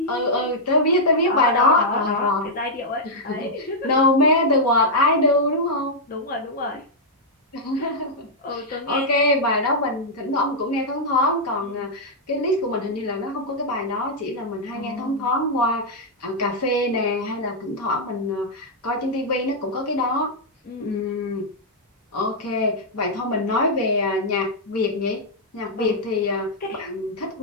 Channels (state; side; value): normal; both; correlation -0.06